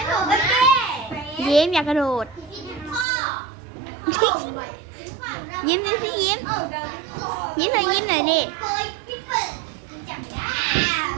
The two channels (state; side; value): drops out; left; at 3.1 s